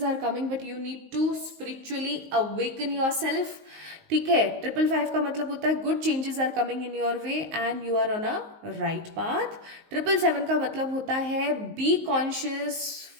are coming but you need to spiritually awaken yourself, ठीक है। 555 का मतलब होता है good changes are coming in your way and you are on a right path. 777 का मतलब होता है be conscious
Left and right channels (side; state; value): left; late; 19 ms